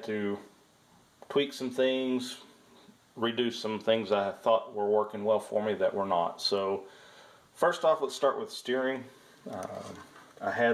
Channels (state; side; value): identical; both; correlation 1.00